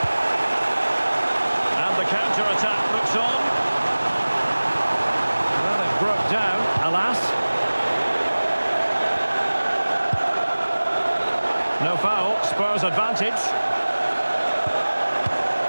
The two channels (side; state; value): both; inverted; correlation -1.00